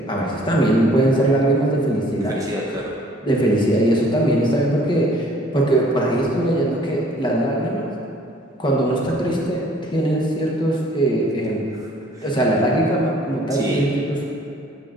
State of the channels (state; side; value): normal; both; correlation 0.57